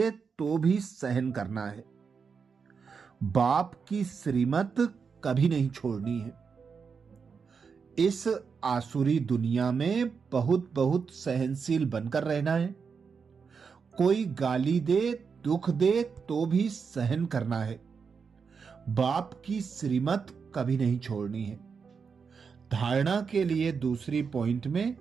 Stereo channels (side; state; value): left; quieter; 5.7 dB